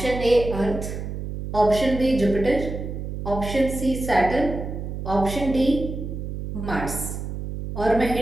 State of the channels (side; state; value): right; noise; hum, 6 dB below the sound